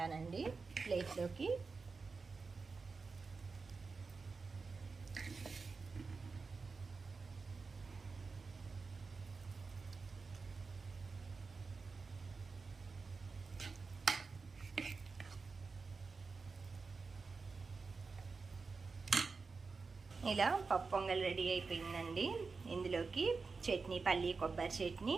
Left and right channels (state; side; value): quieter; left; 4.5 dB